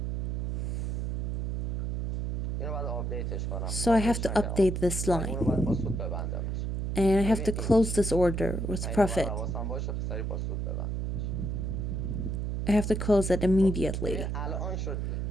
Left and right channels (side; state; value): right; noise; hum, 1 dB below the sound